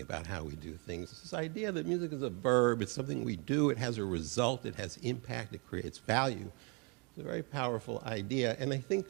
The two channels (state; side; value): quieter; left; 34.3 dB